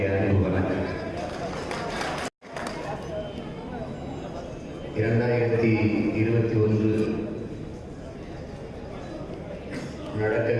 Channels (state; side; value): identical; both; correlation 1.00